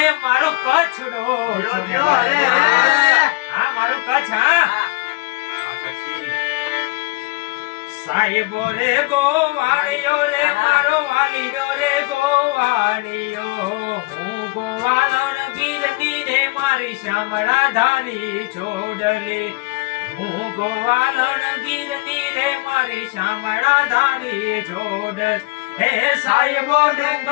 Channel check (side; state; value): right; quieter; 24.5 dB